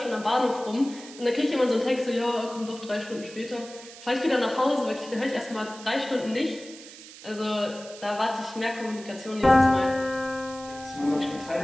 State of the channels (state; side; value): noise; right; hiss, 17 dB below the sound